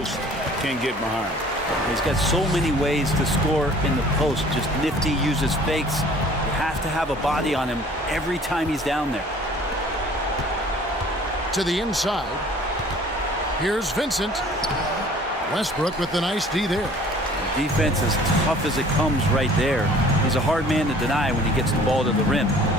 can get behind. He's got so many ways to score in the post. Just nifty, uses fakes. You have to have a body on him every time he's down there. To the inside. Here's Vincent. Westbrook with the nice D there. The defense as tough as it comes right there. He's a hard man to deny when he gets the ball to the rim.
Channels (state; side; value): normal; both; correlation 0.51